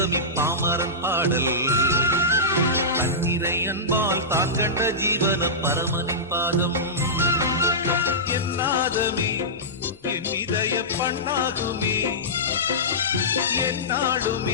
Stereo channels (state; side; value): normal; both; correlation -0.16